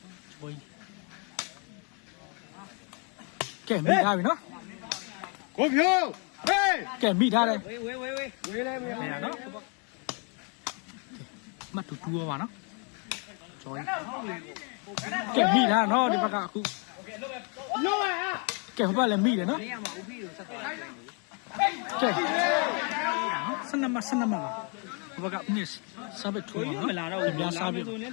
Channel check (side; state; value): right; quieter; 36.2 dB